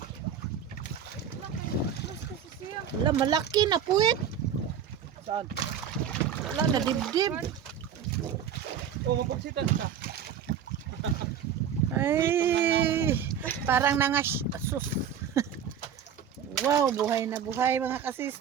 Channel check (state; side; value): quieter; left; 8.3 dB